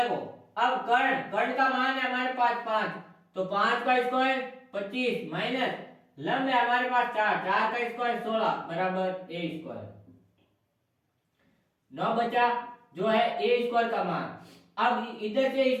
अब कर्ण का मान है हमारे पास 5, तो 5 का स्क्वायर 25 माइनस लंब है हमारे पास 4 का स्क्वायर 16 बराबर a स्क्वायर। 9 बचा जो है a स्क्वायर का मान। अब इधर से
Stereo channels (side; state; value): both; identical; correlation 1.00